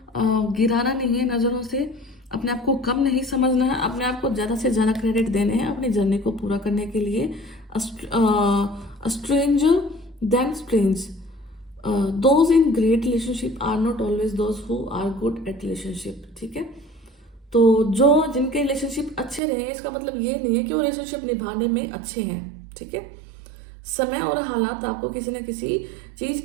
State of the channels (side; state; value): left; drops out; at 19.4 s